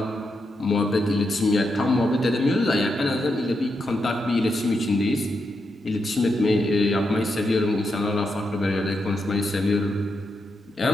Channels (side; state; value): both; normal; correlation 0.84